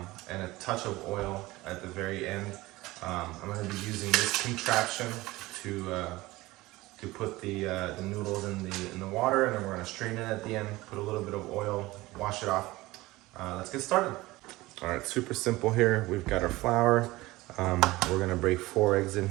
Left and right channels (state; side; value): quieter; left; 19.4 dB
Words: a touch of oil at the very end. I'm going to be using this contraption to put the noodles in the water, and then we're going to strain it at the end, put a little bit of oil, wash it off. Let's get started. All right, super simple here. We've got our flour. We're going to break 4 eggs in